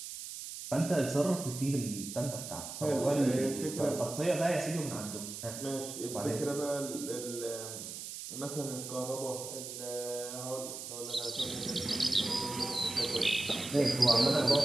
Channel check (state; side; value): noise; right; hiss, 9 dB below the sound